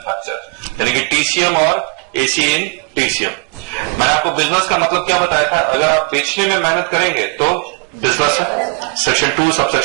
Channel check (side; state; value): left; quieter; 32.7 dB